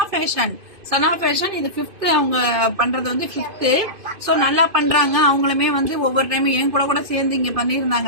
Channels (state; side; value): late; left; 2.5 ms